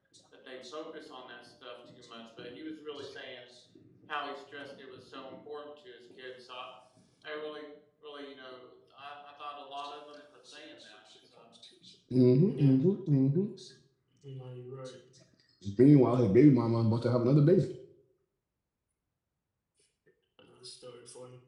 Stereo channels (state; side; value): identical; both; correlation 1.00